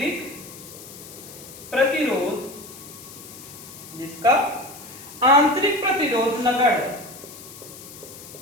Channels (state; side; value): noise; left; hiss, 16 dB below the sound